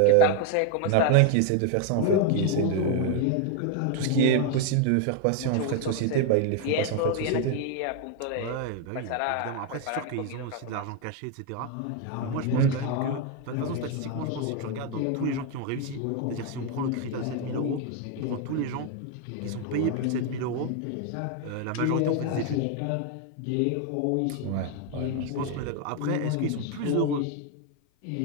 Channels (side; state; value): both; different; correlation 0.01